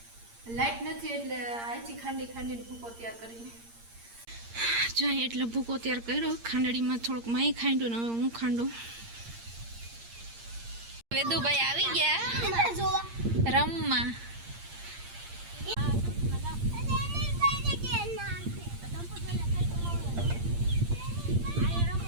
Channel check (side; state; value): left; late; 8.7 ms